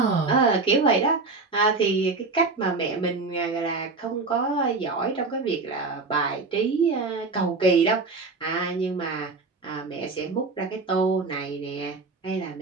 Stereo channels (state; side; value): quieter; left; 3.9 dB